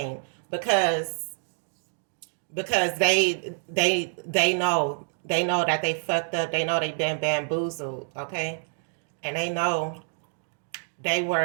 because they know that they fucked up. They know they've been bamboozled. Okay, and they know they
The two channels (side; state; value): left; silent; digital silence